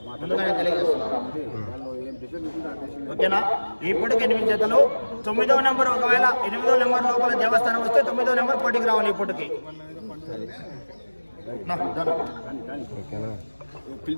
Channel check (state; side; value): inverted; both; correlation -1.00